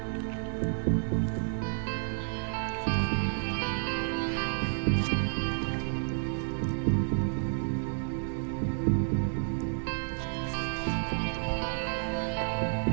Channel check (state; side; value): silent; left; digital silence